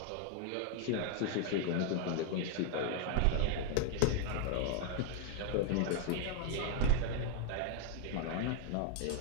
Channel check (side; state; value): both; different; correlation 0.00